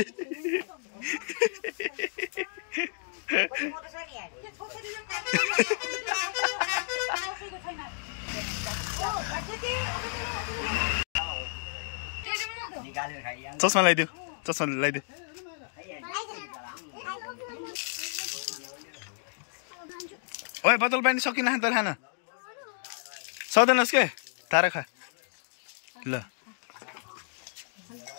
चस्मा लगाइदियो चस्मा लगाइदियो ओए बोतल पानी सकिन त खान सक्दैनस् के तारा खा ल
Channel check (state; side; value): silent; right; digital silence